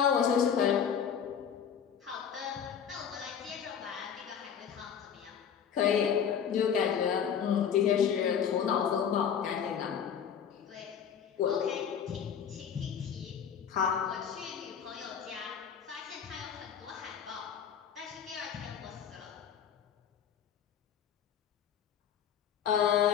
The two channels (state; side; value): quieter; right; 8.0 dB